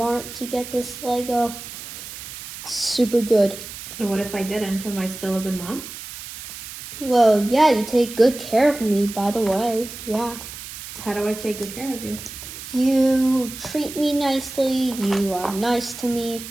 to get this Lego. It's super good. And what if I didn't? Am I still a good mom? Well, yeah, you take good care of me, by the way. Yeah. How do I take good care of you? You treat me nicely. You are nice to me.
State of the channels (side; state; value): right; noise; hiss, 12 dB below the sound